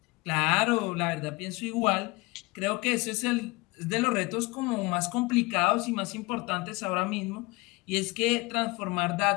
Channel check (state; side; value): quieter; right; 23.9 dB